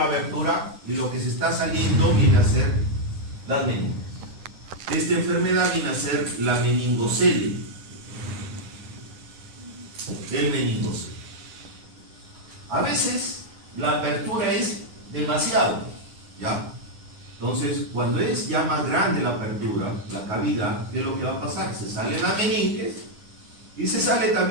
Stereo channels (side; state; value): left; late; 9.6 ms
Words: abertura y lo que se está saliendo viene a ser las meninges. Esta enfermedad viene a ser la meningocelia. El meningocele. A veces la apertura es demasiado, ¿ya? Entonces, cuando es ya más grande la apertura, la cavidad, ¿qué es lo que va a pasar? Se sale la meninges y se sale